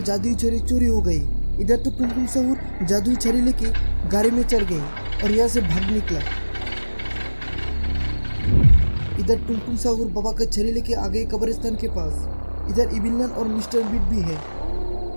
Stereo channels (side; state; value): both; inverted; correlation -1.00